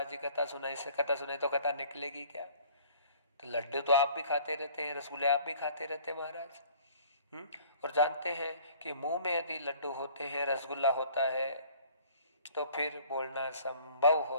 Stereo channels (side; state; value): both; inverted; correlation -0.53